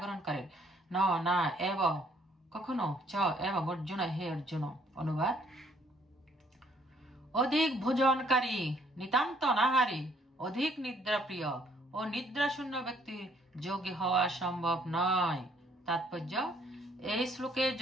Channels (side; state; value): both; normal; correlation 0.65